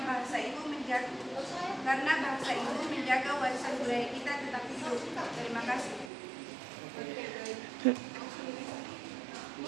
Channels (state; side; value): drops out; left; at 6.1 s